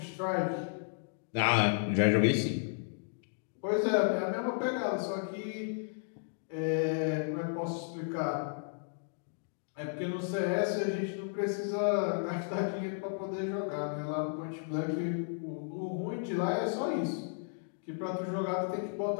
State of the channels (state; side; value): silent; right; digital silence